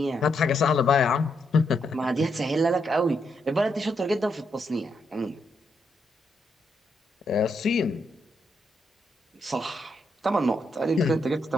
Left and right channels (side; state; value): both; normal; correlation 0.79